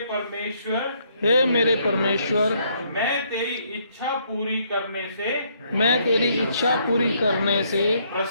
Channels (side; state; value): both; inverted; correlation -0.70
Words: परमेश्वर, हे मेरे परमेश्वर, मैं तेरी इच्छा पूरी करने से, मैं तेरी इच्छा पूरी करने से